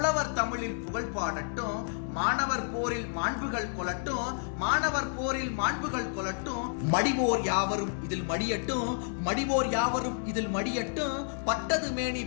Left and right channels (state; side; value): silent; right; digital silence